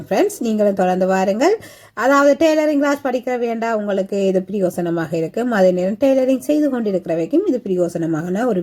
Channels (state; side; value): identical; both; correlation 1.00